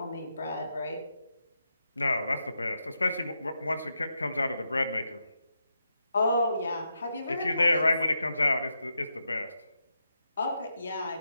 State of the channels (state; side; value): inverted; both; correlation -0.85